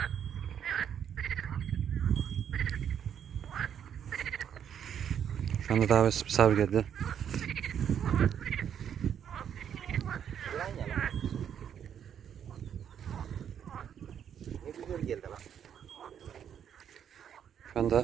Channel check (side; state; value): left; quieter; 8.8 dB